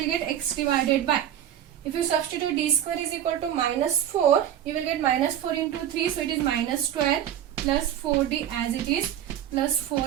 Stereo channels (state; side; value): quieter; left; 10.7 dB